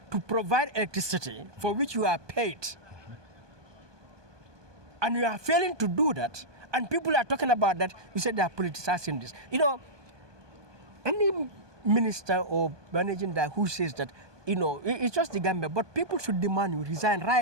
to provide electricity for which you are paid. And you are failing to do that, and people are talking about that. You said they are politicizing this. You know, any minister or managing director who says that, you know, it's just the Gambia, but people should demand you resign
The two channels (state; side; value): late; left; 1.2 ms